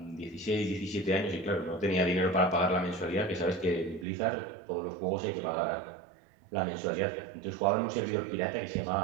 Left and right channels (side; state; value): left; drops out; at 4.0 s